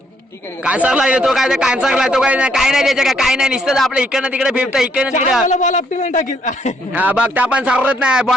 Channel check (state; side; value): normal; both; correlation 0.70